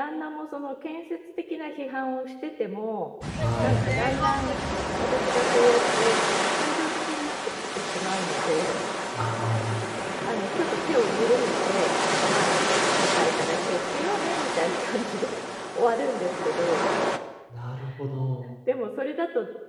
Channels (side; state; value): both; identical; correlation 1.00